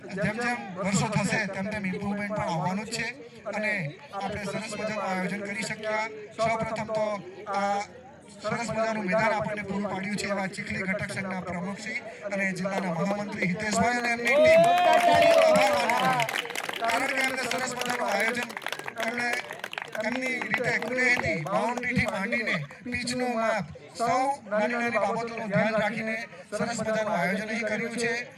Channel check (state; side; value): identical; both; correlation 1.00